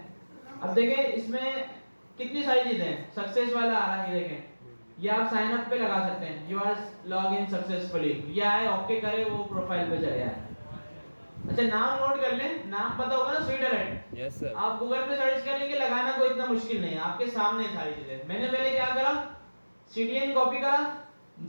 अब देखिए इसमें कितनी सारी चीजें हैं। सक्सेस वाला आ रहा है, देखें ये आप साइन अप पे लगा सकते हैं, you are log in successfully. ये आए, ओके करे, वो प्रोफाइल पे चले जाए। अच्छा नाम नोट कर लें, नाम पता होगा ना स्वीट अलर्ट? Yes sir. आप गूगल पे सर्च करेंगे, लगाना कोई इतना मुश्किल नहीं है, आपके सामने सारी चीजें। मैंने पहले क्या करा, सीडीएन कॉपी करा,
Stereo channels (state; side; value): inverted; both; correlation -1.00